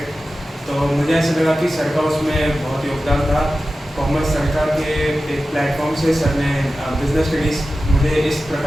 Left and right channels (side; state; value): both; normal; correlation 0.94